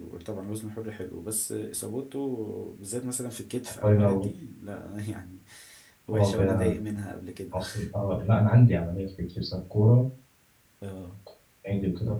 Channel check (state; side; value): identical; both; correlation 1.00